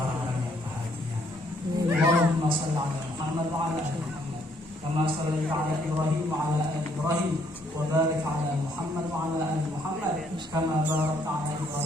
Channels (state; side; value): normal; both; correlation 0.68